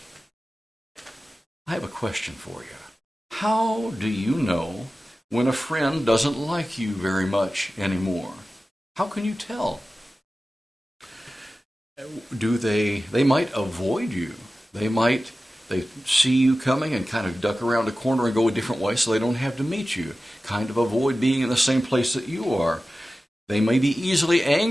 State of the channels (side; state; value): both; normal; correlation 0.95